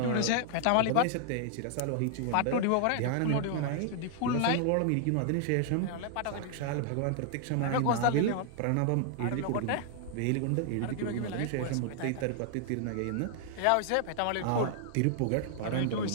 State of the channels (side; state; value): both; different; correlation 0.00